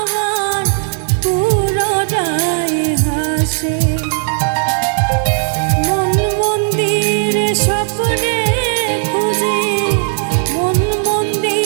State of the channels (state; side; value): silent; left; digital silence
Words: পুরোটাই হাসে। মন মন্দির স্বপ্নে খুঁজি মন